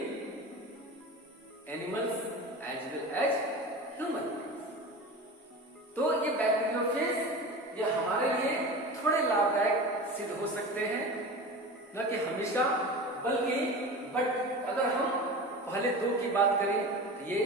animals as well as human beings। तो ये bacteriophage ये हमारे लिए थोड़े लाभदायक सिद्ध हो सकते हैं, न कि हमेशा, बल्कि बट अगर हम पहले दो की बात करें तो ये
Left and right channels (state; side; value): normal; both; correlation 0.31